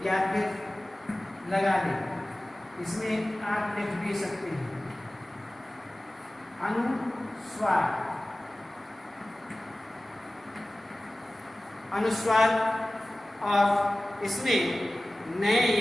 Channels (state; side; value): normal; both; correlation 0.97